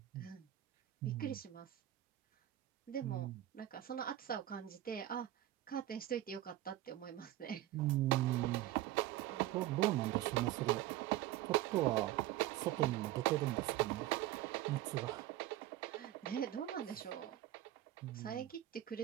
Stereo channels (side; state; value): left; quieter; 14.3 dB